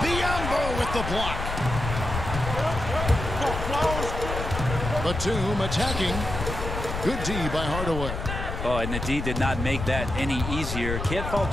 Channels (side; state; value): left; noise; rumble, 5 dB below the sound